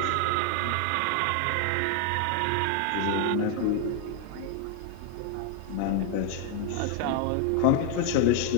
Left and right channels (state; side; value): different; both; correlation 0.00